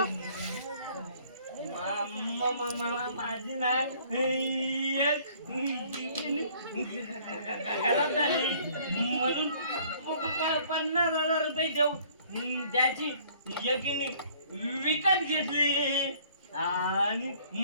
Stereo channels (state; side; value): inverted; both; correlation -0.57